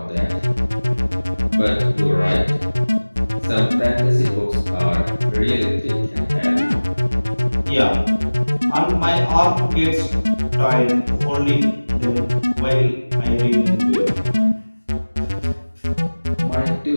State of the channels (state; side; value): inverted; both; correlation -1.00